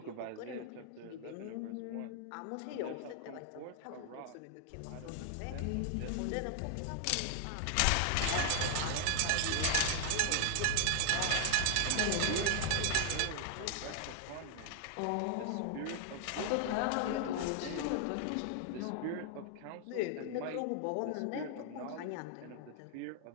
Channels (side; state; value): both; different; correlation 0.00